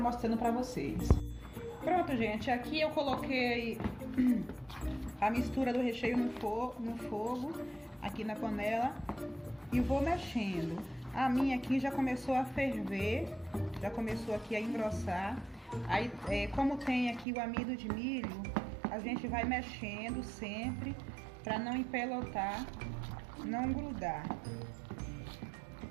para vocês. Pronto, gente. Aqui eu coloquei a mistura do recheio no fogo, aqui na panela. E vou mexendo. A minha aqui já começou a ferver, já começou aqui a engrossar. Aí, como tem aqui o amido de milho, a gente vai mexendo sempre para não empelotar, não grudar.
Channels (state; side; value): drops out; left; at 17.2 s